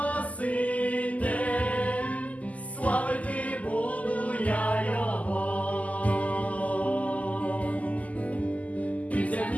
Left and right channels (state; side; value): late; right; 0.073 ms